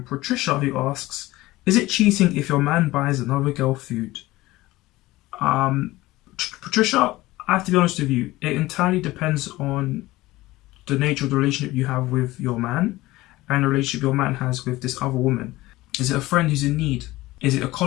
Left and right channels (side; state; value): right; quieter; 18.4 dB